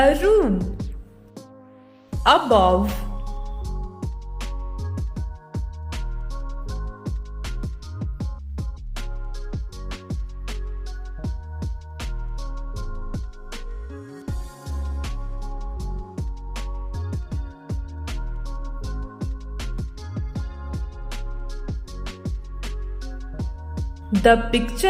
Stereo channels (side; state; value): both; identical; correlation 1.00